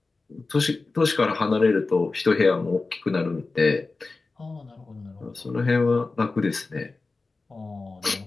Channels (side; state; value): right; quieter; 3.7 dB